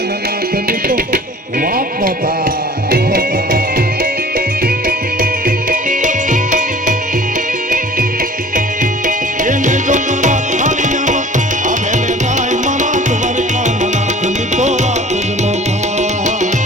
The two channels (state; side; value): normal; both; correlation 0.48